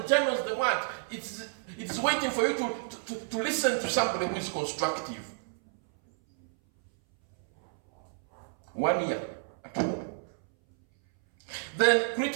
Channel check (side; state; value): left; silent; 58 dB below the other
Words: journals, the what. It's waiting for you to listen to somebody who is constructive. 1 year at home. Then